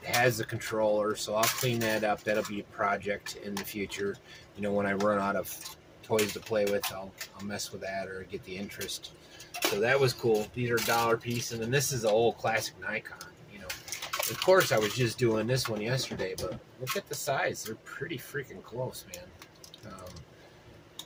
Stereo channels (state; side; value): identical; both; correlation 1.00